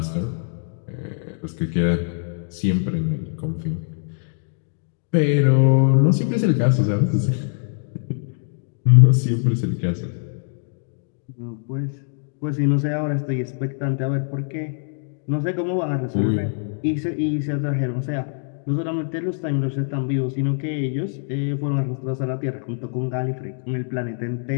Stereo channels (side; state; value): right; silent; digital silence